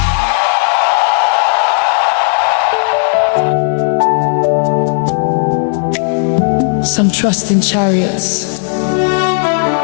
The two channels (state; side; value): silent; right; digital silence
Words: Some trust in chariots,